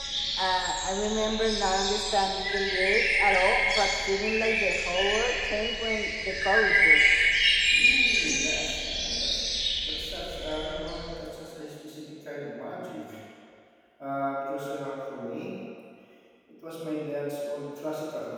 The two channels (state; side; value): identical; both; correlation 1.00